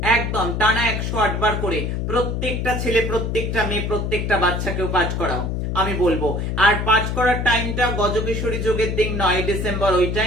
একদম টানা 108 বার করে প্রত্যেকটা ছেলে, প্রত্যেকটা মেয়ে, প্রত্যেকটা বাচ্চাকেও পাঠ করাও। আমি বলবো, আর পাঠ করার টাইমটা গজকেশরী যোগের দিন 9 ডিসেম্বর, ওই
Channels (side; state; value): left; noise; hum, 1 dB below the sound